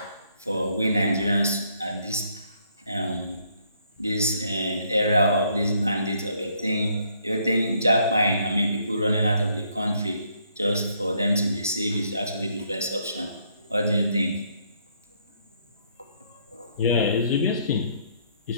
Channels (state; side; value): inverted; both; correlation -0.69